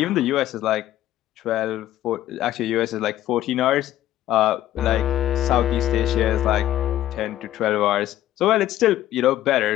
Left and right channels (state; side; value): quieter; right; 13.2 dB